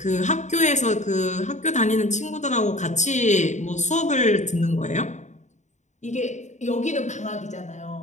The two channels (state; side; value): late; right; 0.34 ms